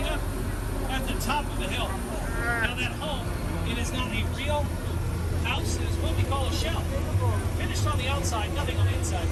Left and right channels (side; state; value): both; identical; correlation 1.00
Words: up at the top of the hill. Now that home, it is not a real house, it is what we call a shell. Finished on the outside, nothing on the inside.